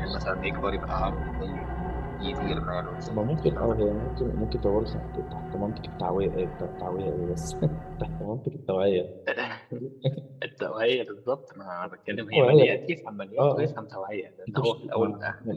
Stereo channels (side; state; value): both; identical; correlation 1.00